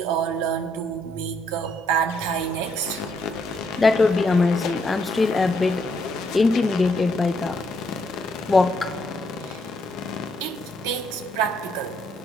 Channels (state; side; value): normal; both; correlation 0.74